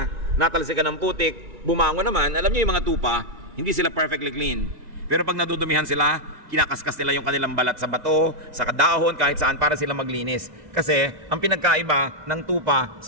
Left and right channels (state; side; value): late; left; 2.0 ms